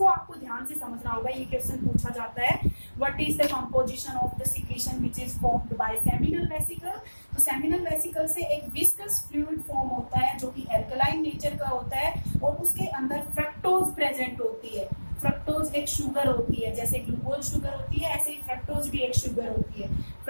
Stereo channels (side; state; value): both; inverted; correlation -1.00